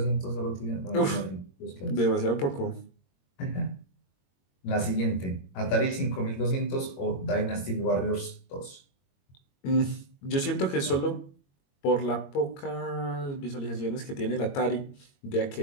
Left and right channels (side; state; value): right; late; 22 ms